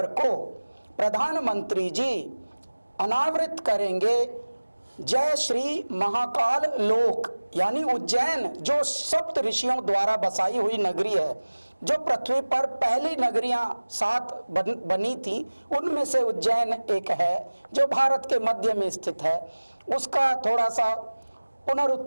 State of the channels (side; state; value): both; inverted; correlation -1.00